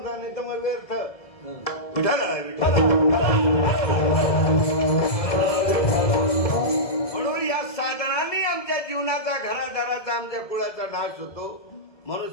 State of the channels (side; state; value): right; late; 1.7 ms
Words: नाही तर मग व्यर्थ. विठाला म्हणून या साधनाने आमच्या जीवनाचा घरादाराचा आमच्या कुळाचा नाश होतो. म्हणून